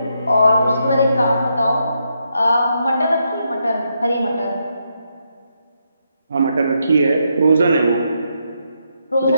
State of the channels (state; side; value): inverted; both; correlation -0.80